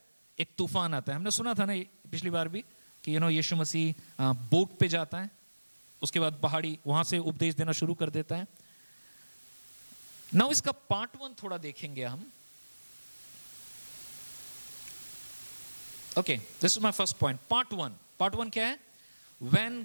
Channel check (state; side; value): inverted; both; correlation -1.00